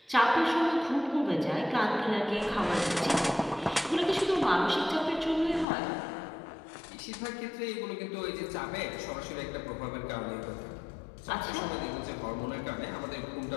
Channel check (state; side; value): drops out; right; at 5.7 s